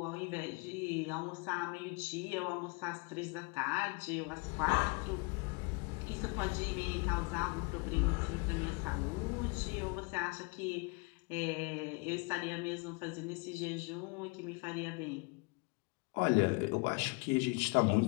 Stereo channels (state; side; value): quieter; right; 30.5 dB